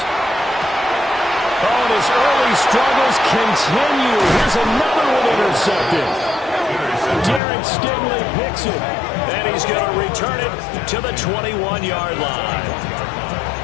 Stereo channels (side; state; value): right; drops out; at 7.4 s